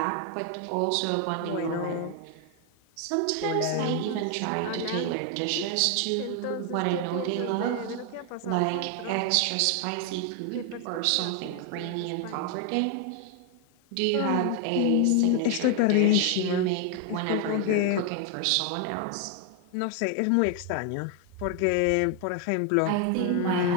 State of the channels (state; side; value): different; both; correlation 0.00